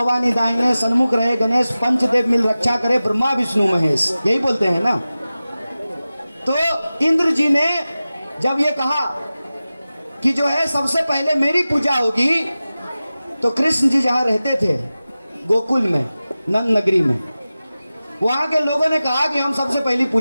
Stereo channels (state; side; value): inverted; both; correlation -0.96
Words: दाहिने सन्मुख रहे गणेश, पंचदेव मिल रक्षा करे ब्रह्मा विष्णु महेश, यही बोलते हैं ना। तो इंद्र जी ने जब ये कहा कि जो है सबसे पहले मेरी पूजा होगी, तो कृष्ण जी जहां रहते थे गोकुल में, नंद नगरी में, वहां के लोगों ने कहा कि हम सबसे पहली